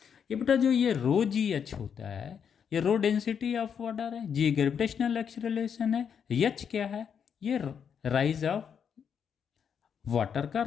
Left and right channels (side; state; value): right; quieter; 7.4 dB